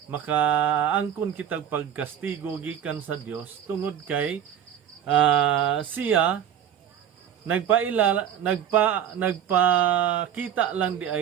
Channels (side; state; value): left; quieter; 9.4 dB